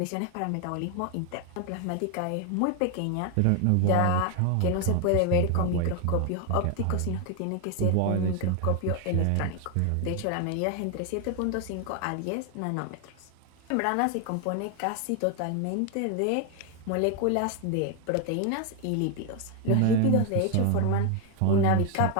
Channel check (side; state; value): both; different; correlation 0.01